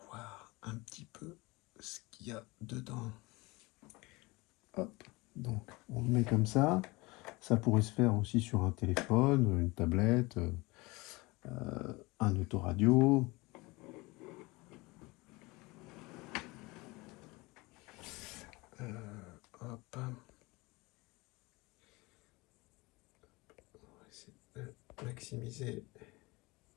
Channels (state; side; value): quieter; right; 23.6 dB